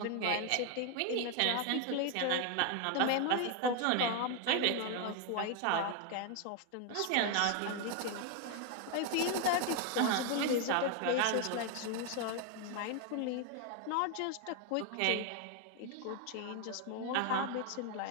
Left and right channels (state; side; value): different; both; correlation 0.01